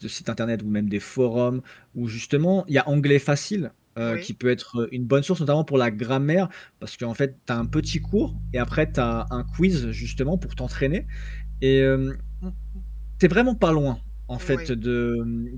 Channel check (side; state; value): both; identical; correlation 1.00